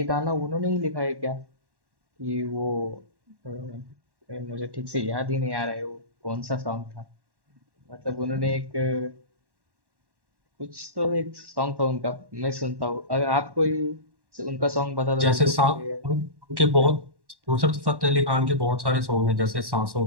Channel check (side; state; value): left; late; 1.1 ms